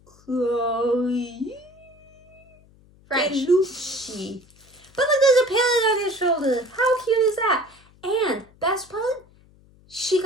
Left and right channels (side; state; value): left; noise; hum, 28 dB below the sound